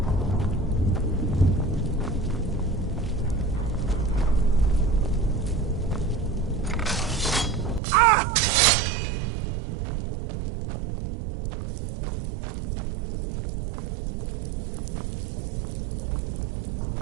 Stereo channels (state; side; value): drops out; left; at 7.8 s